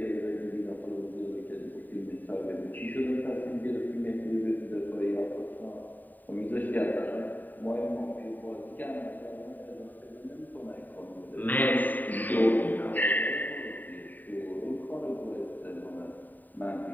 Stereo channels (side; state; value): right; late; 0.087 ms